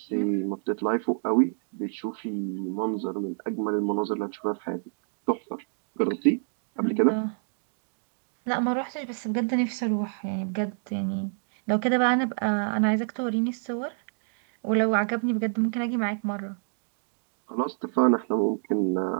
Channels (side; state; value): left; silent; digital silence